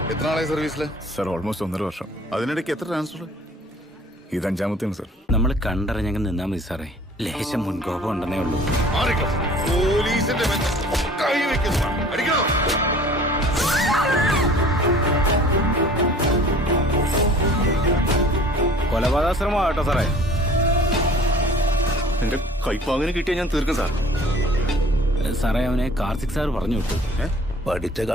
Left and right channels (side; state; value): both; normal; correlation 0.49